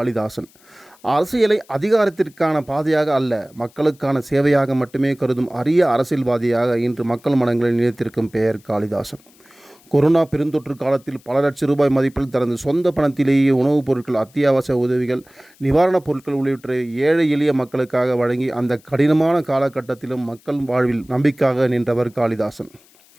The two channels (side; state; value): left; noise; hiss, 29 dB below the sound